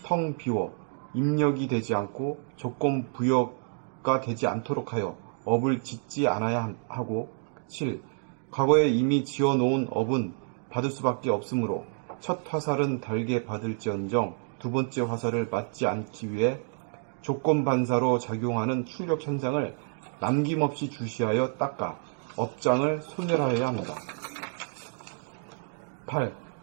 텅 비워 입력이 되지 않고 조건 부여가 되지 않도록 하여 업을 짓지 않아야 하고 7. 과거에 이미 지어놓은 업은 받을 수밖에 없으므로 첫 화살은 달게 받을지언정 두 번째 화살을 맞지 않기 위해 조건 반사로 작용하는 출력 현상을 남김없이 주시하여 닦아 업장을 소멸하여야 합니다. 8.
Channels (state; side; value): silent; left; 59 dB below the other